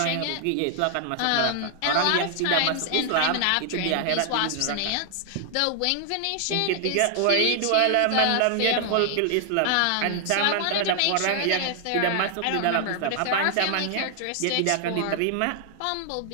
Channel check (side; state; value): both; different; correlation 0.00